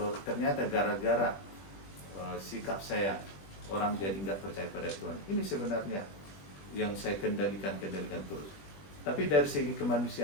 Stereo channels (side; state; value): right; late; 20 ms